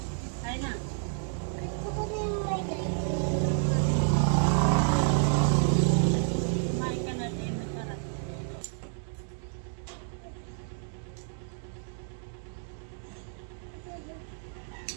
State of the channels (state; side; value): silent; left; digital silence